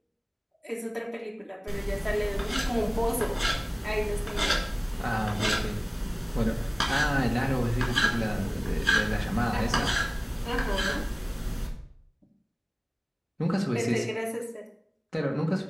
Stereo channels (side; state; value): both; identical; correlation 1.00